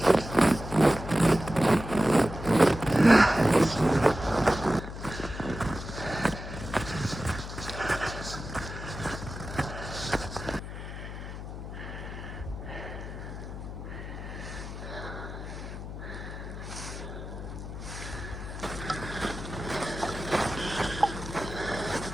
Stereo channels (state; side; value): noise; left; hum, 9 dB below the sound